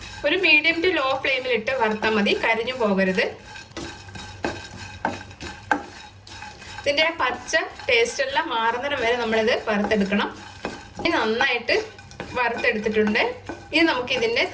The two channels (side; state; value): both; identical; correlation 1.00